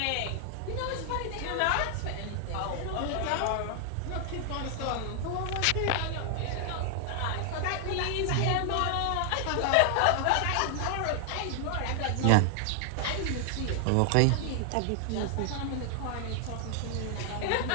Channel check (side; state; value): both; different; correlation 0.00